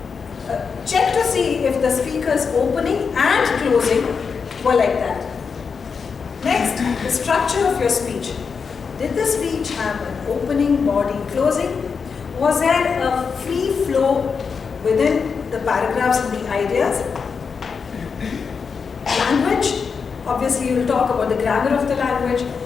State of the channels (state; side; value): quieter; right; 5.7 dB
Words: check to see if the speaker's opening and closing were like that. Next, the structure of your speech. Did the speech have an opening, body, closing? Was there a free flow within the paragraphs and the ideas? Language, obviously you will talk about the grammar of the language.